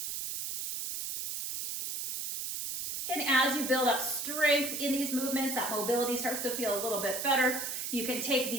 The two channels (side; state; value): right; noise; hiss, 4 dB below the sound